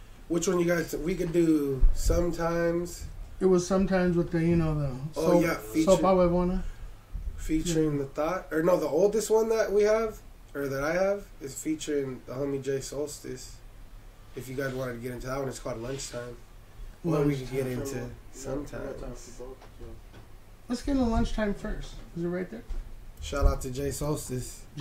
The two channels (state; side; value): identical; both; correlation 1.00